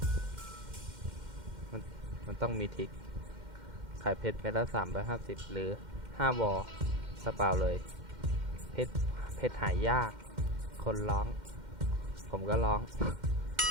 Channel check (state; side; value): late; left; 2.1 ms